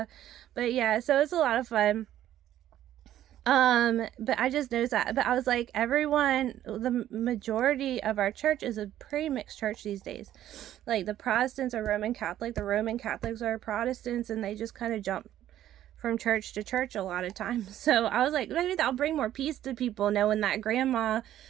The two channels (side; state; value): left; quieter; 12.3 dB